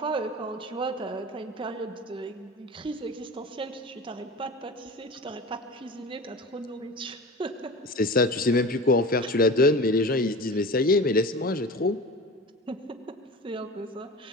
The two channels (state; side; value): normal; both; correlation 0.33